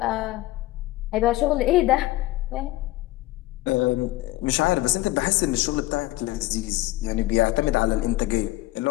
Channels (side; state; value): right; quieter; 17.6 dB